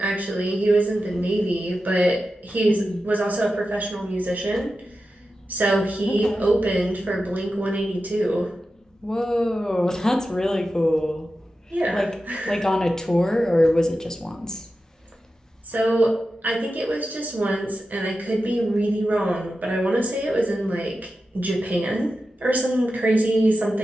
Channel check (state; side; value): normal; both; correlation 0.92